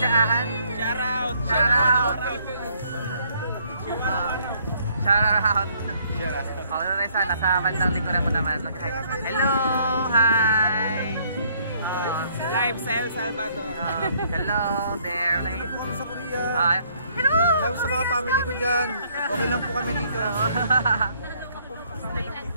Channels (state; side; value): inverted; both; correlation -0.65